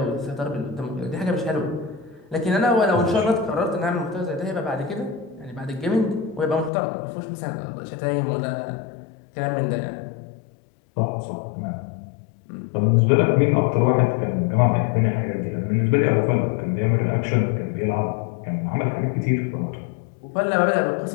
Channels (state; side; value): drops out; right; at 6.7 s